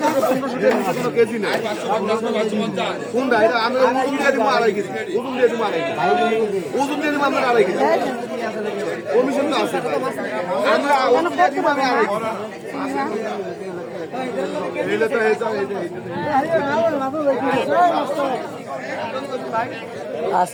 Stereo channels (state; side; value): identical; both; correlation 1.00